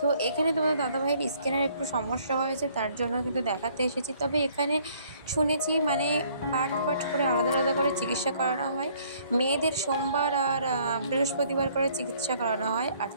এখানে তোমাদের দাদাভাইয়ের স্কিনের একটু সমস্যা হয়েছে, তার জন্য কিন্তু দেখাতে এসেছি। তবে এখানে শুনেছি মানে পার্ট পার্ট করে আলাদা আলাদা করে চিকিৎসা করানো হয়। মেয়েদের সোমবার আর বৃহস্পতিবার করে চিকিৎসা করানো হয়, আর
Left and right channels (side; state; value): both; inverted; correlation -0.62